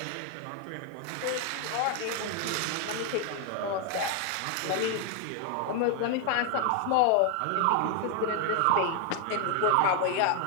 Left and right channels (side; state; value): both; different; correlation 0.01